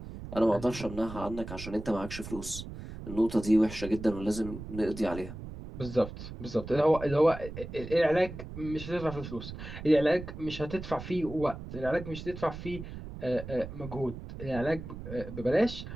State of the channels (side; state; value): right; noise; rumble, 10 dB below the sound